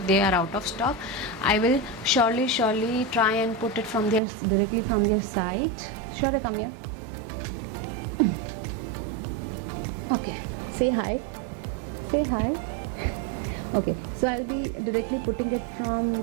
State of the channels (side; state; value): left; drops out; at 4.2 s